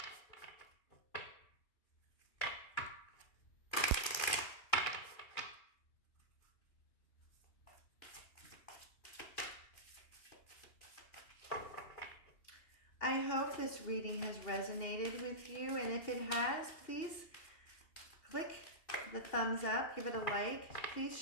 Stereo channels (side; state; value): right; late; 2.5 ms